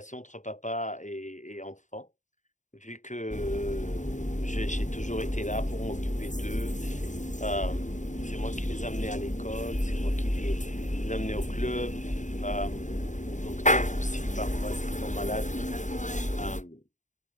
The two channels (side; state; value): right; late; 0.36 ms